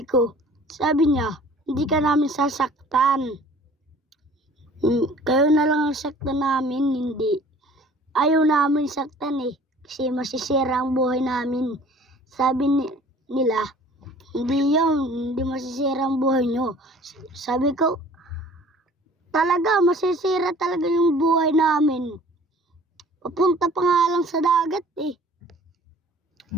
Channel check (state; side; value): normal; both; correlation 0.49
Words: niya, hindi ka namin sasaktan. Kayo na lang ang saktan namin, hindi. Ayaw namin saktan eh, kasi masisira ang buhay namin. Sabi nila, hindi yun, hindi masisira ang buhay nyo. Sabi ko, talaga, masisira talaga yung buhay namin. Papunta pa nga lang sa dagat eh.